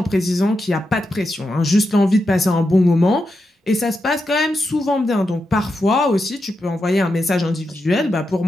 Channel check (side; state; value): both; normal; correlation 0.87